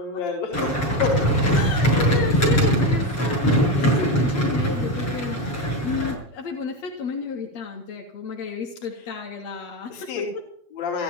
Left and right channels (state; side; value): late; right; 7.3 ms